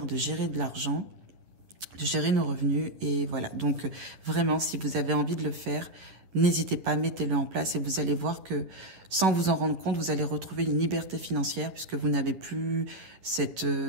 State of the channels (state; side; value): late; left; 10 ms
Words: de gérer de l'argent, de gérer nos revenus. Et voilà, donc vraiment, si vous avez envie de le faire, n'hésitez pas, mettez-le en place et vous allez voir que sans vous en rendre compte, vous allez retrouver une liberté financière puisque vous n'avez plus cette